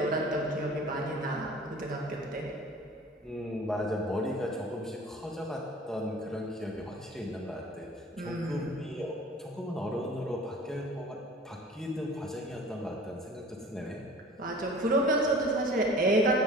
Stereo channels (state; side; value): normal; both; correlation 0.45